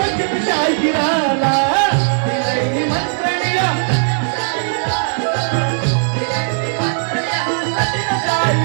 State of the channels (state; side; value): silent; left; digital silence